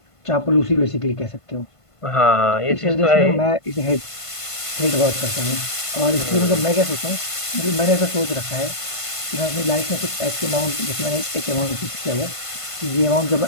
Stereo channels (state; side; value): late; right; 1.5 ms